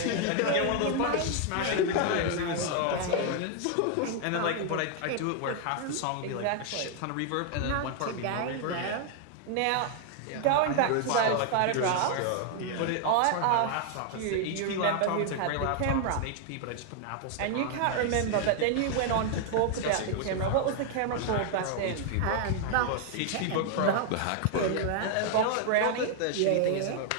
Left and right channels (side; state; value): both; different; correlation 0.00